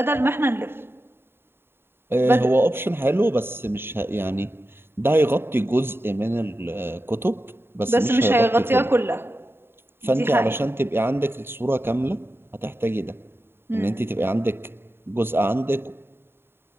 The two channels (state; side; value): late; left; 0.11 ms